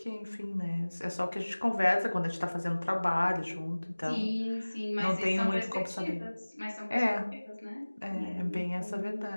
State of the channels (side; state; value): both; inverted; correlation -1.00